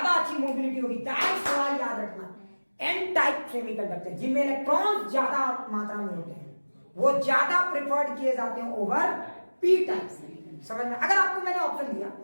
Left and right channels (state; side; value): inverted; both; correlation -1.00